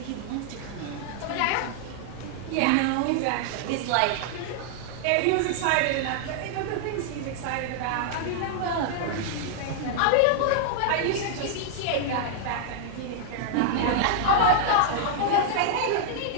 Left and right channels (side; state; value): both; different; correlation 0.00